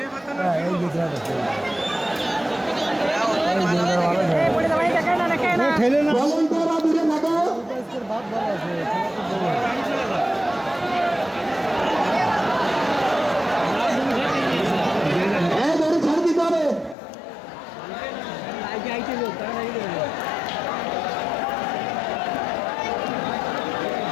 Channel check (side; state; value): right; drops out; at 16.9 s